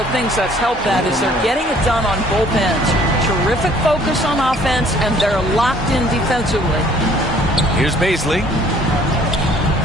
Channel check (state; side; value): normal; both; correlation 0.57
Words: things that's helped that is they're getting it done on both ends. Terrific focus on offense, and they're locked in defensively. Here's Paisley.